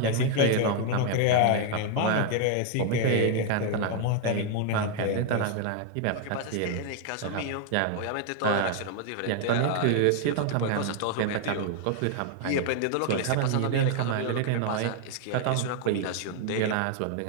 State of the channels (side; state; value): both; different; correlation 0.00